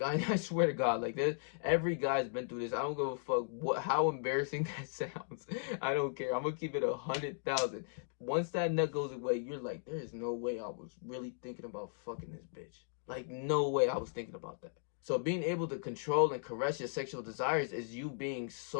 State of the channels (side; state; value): right; silent; digital silence